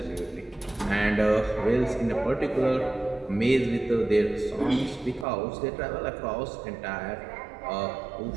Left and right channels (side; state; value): left; drops out; at 5.2 s